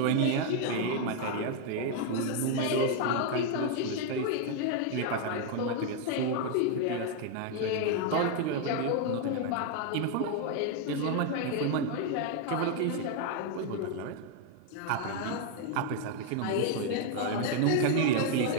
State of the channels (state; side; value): different; both; correlation 0.00